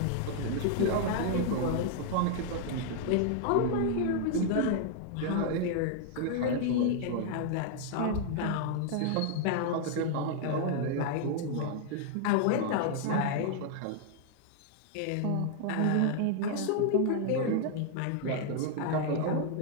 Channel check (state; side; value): different; both; correlation -0.01